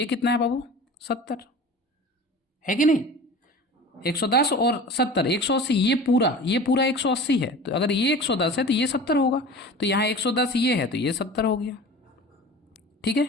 कितना है बाबू, 70 है कि नहीं। 110 और 70, 180, ये पूरा 180 है, तो अगर ये 110 है तो ये 70 होगा, तो यहाँ 110 ये है तो ये 70 हो गया। ठीक है,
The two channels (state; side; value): normal; both; correlation 0.37